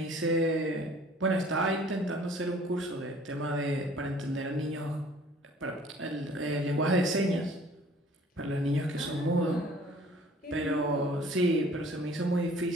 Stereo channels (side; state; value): both; normal; correlation 0.52